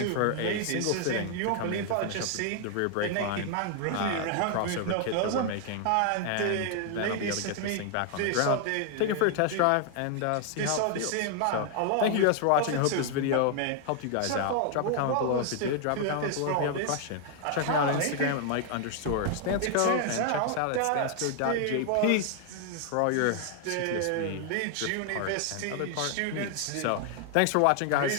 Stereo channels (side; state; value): both; different; correlation 0.00